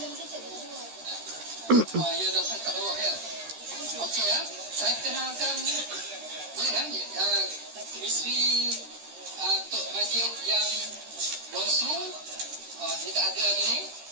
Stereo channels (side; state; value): left; late; 13 ms